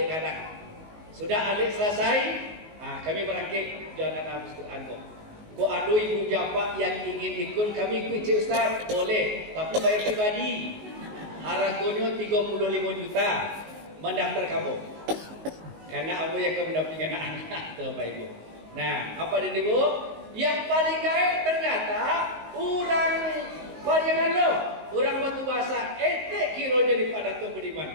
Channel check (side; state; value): left; late; 19 ms